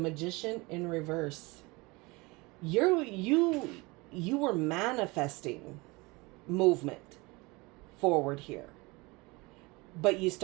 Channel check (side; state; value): left; quieter; 24.5 dB